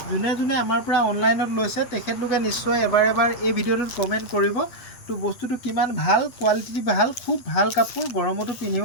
যোনে যোনে আমাৰ পৰা অনলাইনত লৈছে তেখেতলোকে নিশ্চয় এবাৰ এই ভিডিঅ'টোত কমেণ্ট কৰিব। তো বস্তুটো কিমান ভাল, কোৱালিটি ভাল, খুব ভাল কাপোৰ, গৰমতো পিন্ধিব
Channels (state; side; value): late; right; 8.2 ms